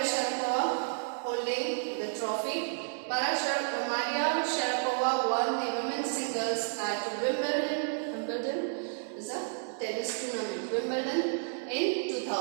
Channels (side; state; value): left; silent; 57 dB below the other